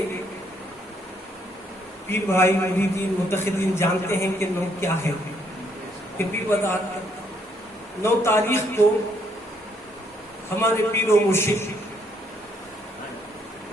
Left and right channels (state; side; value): normal; both; correlation 0.70